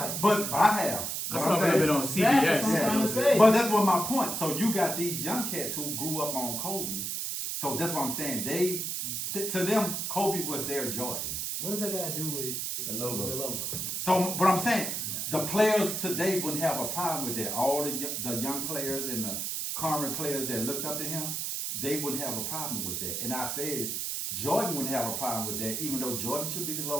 But I have. I saw a little bit on CBS. That's what I'm trying to say. But that's what my point. So you got these young cats who grew up on Kobe. So that's what I'm saying. To them, Kobe was their Jordan. What does that got to do with The logo. The logo. So, but I'm saying the players today wouldn't have a problem with that. All the young players and the current players that looked up to him, they wouldn't have a problem with that. And I said Jordan wouldn't have a problem with that, even though Jordan should be the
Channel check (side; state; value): right; noise; hiss, 2 dB below the sound